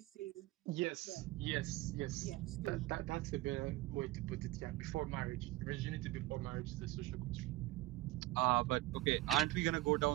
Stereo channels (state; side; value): quieter; left; 17.7 dB